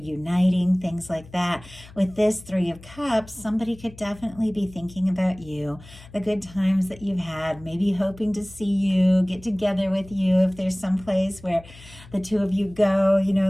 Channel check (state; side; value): noise; left; hum, 20 dB below the sound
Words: things like that. With this 3 of Cups, somebody could definitely be thinking about you, the good times that you've had, maybe hoping to see you, get together with you. If there's some place where the 2 of you go,